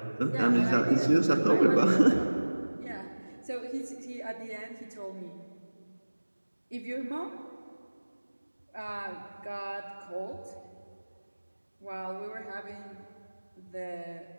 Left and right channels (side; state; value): both; inverted; correlation -1.00